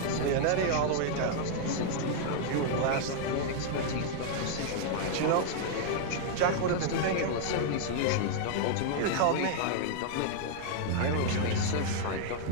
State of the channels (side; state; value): both; different; correlation -0.01